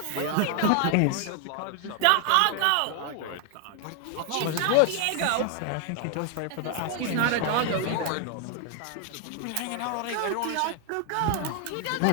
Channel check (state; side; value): different; both; correlation 0.00